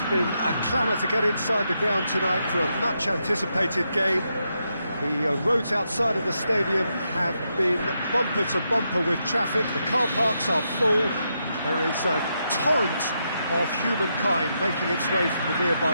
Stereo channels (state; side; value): inverted; both; correlation -0.82